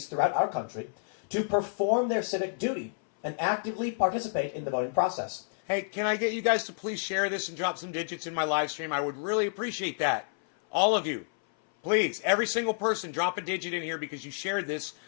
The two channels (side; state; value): right; silent; 58 dB below the other